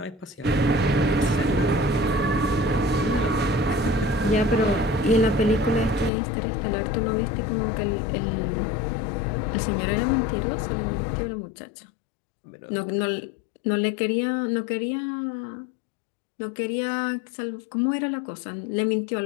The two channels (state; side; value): drops out; right; at 6.1 s